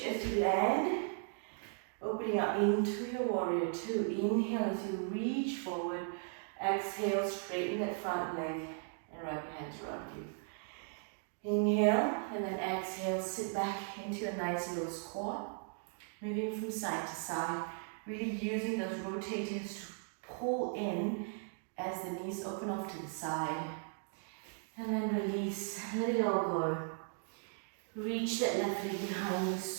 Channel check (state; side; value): silent; left; 53 dB below the other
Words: as you land. Opening up into your warrior 2. Inhale as you reach forward. Exhale, straighten that front leg and wrap your hands around you. Inhale and then exhale, sit back into a nice low squat. Moving from side to side. Really using those rotators to pull in as the knees open off to the side. And then release, let it all go. Reach that left leg behind you,